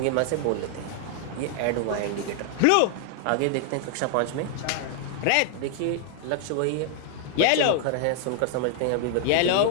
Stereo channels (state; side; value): different; both; correlation 0.00